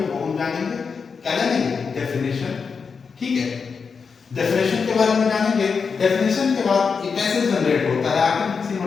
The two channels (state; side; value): quieter; right; 5.5 dB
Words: वो हम जानेंगे। क्या जानेंगे? डेफिनेशन। ठीक है, डेफिनेशन के बारे में जानेंगे। डेफिनेशन के बाद ये कैसे जनरेट होता है, आखिर किसी